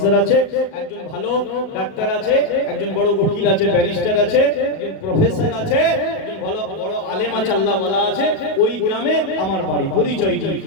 আছে, একজন ভালো ডাক্তার আছে, একজন বড় উকিল আছে, ব্যারিস্টার আছে, একজন প্রফেসর আছে, একজন ভালো বড় আলেম আছে, আল্লাহ ওয়ালা আছে, ওই গ্রামে আমার বাড়ি, পরিচয় দিই,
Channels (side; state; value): right; late; 36 ms